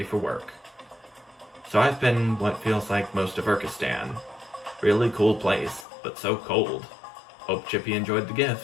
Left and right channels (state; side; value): drops out; right; at 5.9 s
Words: for work. So I've been what feels like most of Urkistan. Really cool place, but so cold. Hope Chippy enjoyed the